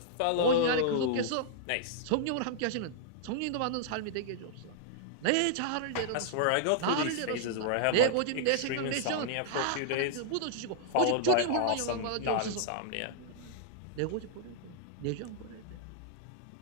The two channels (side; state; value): both; different; correlation -0.01